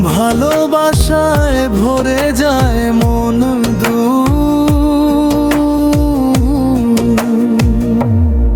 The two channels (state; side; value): identical; both; correlation 1.00